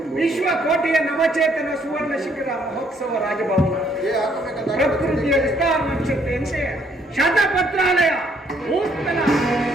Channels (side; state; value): both; normal; correlation 0.67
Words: ವಿಶ್ವಕೋಟೆಯ ನವಚೇತನ ಸುವರ್ಣ ಶಿಖರ ಮಹೋತ್ಸವ ರಾಜಭವನ ಪ್ರಕೃತಿಯ ವಿಸ್ತಾರ ನಕ್ಷತ್ರೆಯಂತೆ ಶತಪತ್ರಾಲಯ ಭೂಸ್ಥಳ